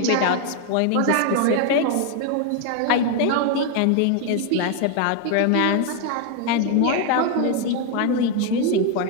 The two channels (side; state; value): both; different; correlation 0.01